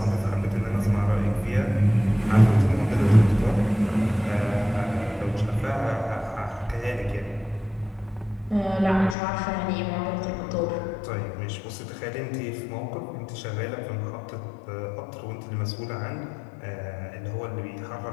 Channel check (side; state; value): right; drops out; at 9.2 s